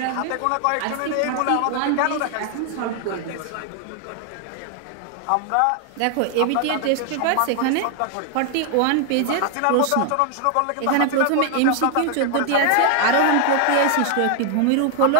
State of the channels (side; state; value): both; different; correlation 0.00